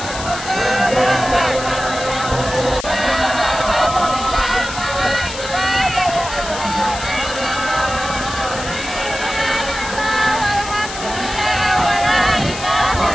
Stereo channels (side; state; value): left; noise; hiss, 10 dB below the sound